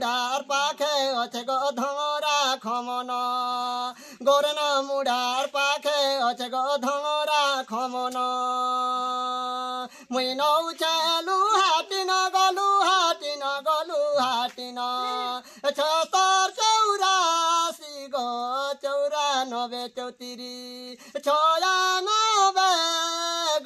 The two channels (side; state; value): both; identical; correlation 1.00